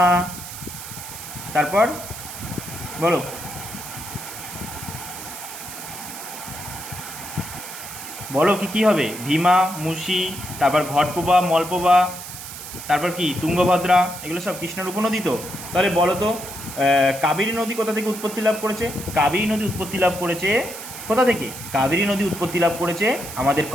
তারপর বলো কি কী হবে? ভীমা, মুসি, তারপর ঘটপ্রভা, মলপ্রভা, তারপর কি তুঙ্গভদ্রা, এগুলো সব কৃষ্ণার উপনদী তো। তাহলে বলো তো কাবেরী নদী কোথা থেকে উৎপত্তি লাভ করেছে? কাবেরী নদী উৎপত্তি লাভ করেছে কোথা থেকে? কাবেরী নদী উৎপত্তি লাভ করেছে আমাদের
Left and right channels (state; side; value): noise; right; hiss, 11 dB below the sound